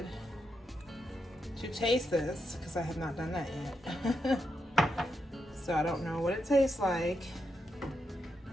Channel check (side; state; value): both; normal; correlation 0.84